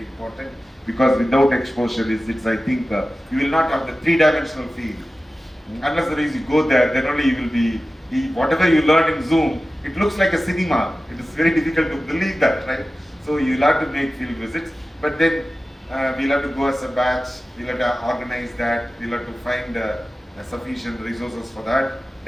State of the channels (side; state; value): both; normal; correlation 0.95